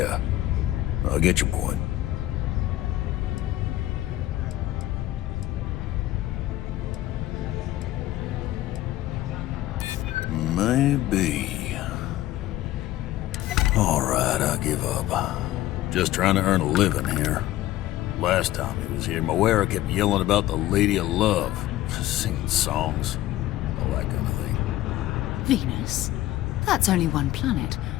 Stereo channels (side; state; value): right; quieter; 15.1 dB